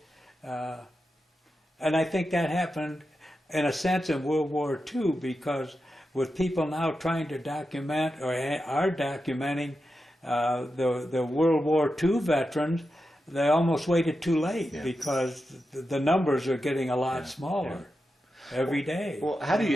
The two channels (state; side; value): normal; both; correlation 0.89